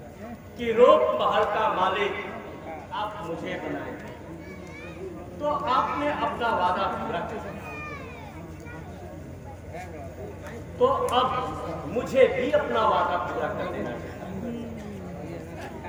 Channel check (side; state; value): both; identical; correlation 1.00